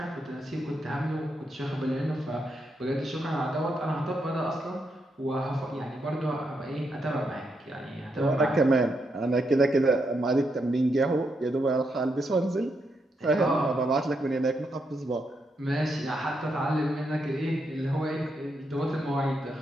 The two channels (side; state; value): both; normal; correlation 0.81